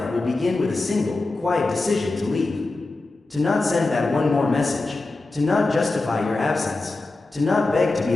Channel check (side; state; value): right; quieter; 3.2 dB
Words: will begin with a single, quiet decision to leave. To not send that one more message. To not justify your absence. To not beg to